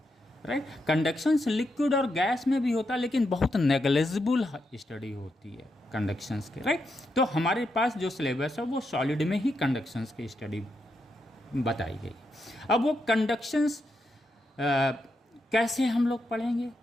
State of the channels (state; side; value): normal; both; correlation 0.83